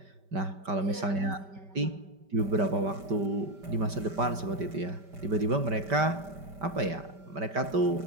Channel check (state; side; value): late; left; 5.1 ms